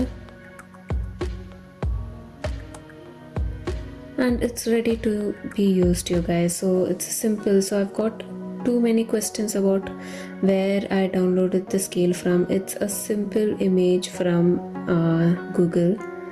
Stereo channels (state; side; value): identical; both; correlation 1.00